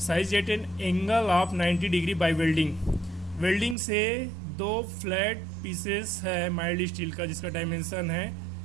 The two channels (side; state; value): left; drops out; at 3.8 s